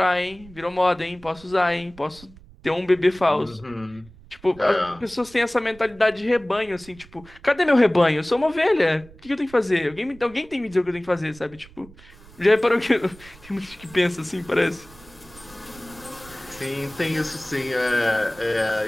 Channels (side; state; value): right; noise; rumble, 22 dB below the sound